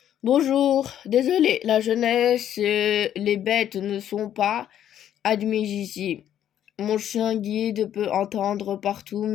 Bonjour, désolé, la jeunesse, les bêtes ne sont pas admises ici. Mon chien guide peut entendre partout,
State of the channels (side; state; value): right; quieter; 10.6 dB